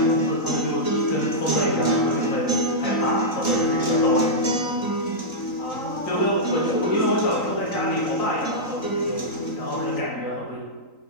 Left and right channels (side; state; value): right; late; 3.9 ms